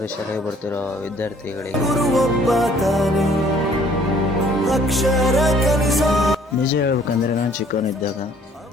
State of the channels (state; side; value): normal; both; correlation 0.58